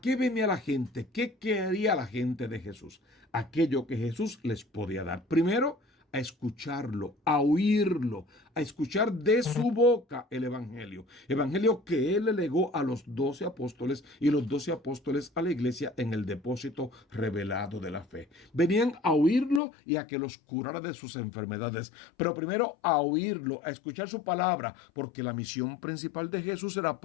venía la gente? ¿Qué quería la gente de Jesús? Aquello que Jesús les podía dar. Primero, a escucharlo, a oírlo, a escuchar de su boca el evangelio. Evangelio que él le legó a los 12 apóstoles y los 12 apóstoles a la iglesia en el depósito revelado de la fe. Venían a oírlo y a que los curara de sus enfermedades. Pero primero a oírlo, a escuchar su palabra, porque la misión principal de Jesús era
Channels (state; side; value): drops out; right; at 19.6 s